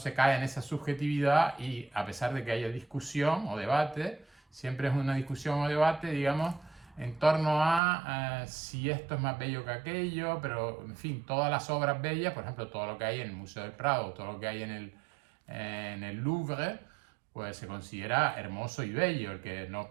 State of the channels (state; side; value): drops out; left; at 7.8 s